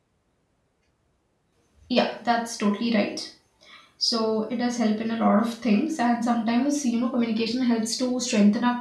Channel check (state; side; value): identical; both; correlation 1.00